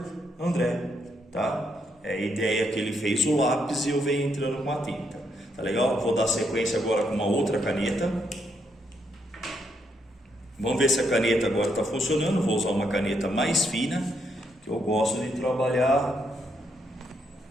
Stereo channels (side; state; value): both; normal; correlation 0.77